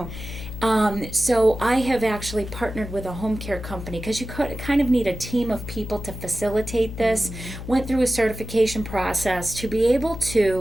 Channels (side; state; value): left; noise; hum, 9 dB below the sound